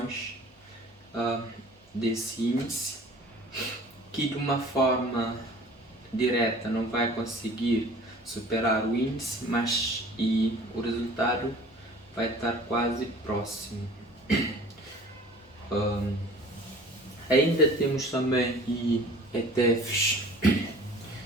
desse índice, que de uma forma direta não vai conseguir superar o índice, mas o resultado vai estar quase próximo. Ainda temos também ETFs,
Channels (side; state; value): both; normal; correlation 0.47